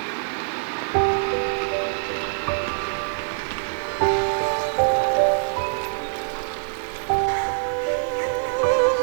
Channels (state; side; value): silent; left; digital silence